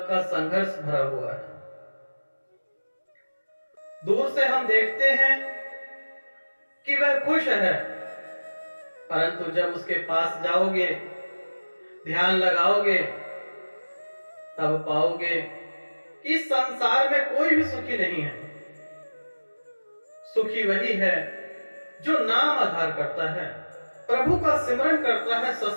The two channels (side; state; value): both; inverted; correlation -1.00